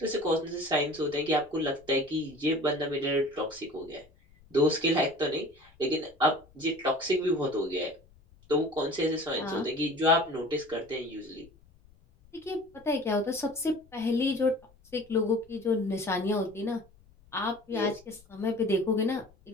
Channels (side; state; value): left; noise; rumble, 28 dB below the sound